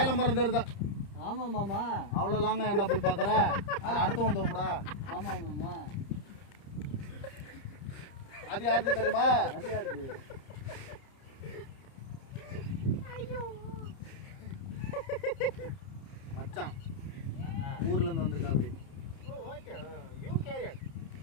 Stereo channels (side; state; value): right; late; 30 ms